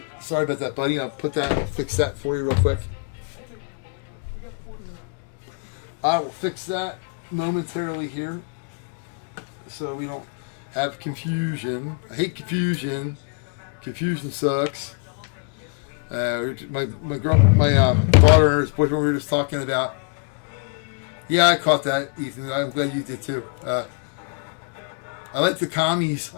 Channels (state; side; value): quieter; right; 38.0 dB